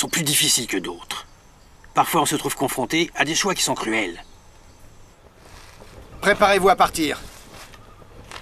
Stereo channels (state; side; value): identical; both; correlation 1.00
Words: plus difficiles que d'autres. Parfois, on se trouve confronté à des choix qui sont cruels. Préparez-vous à partir.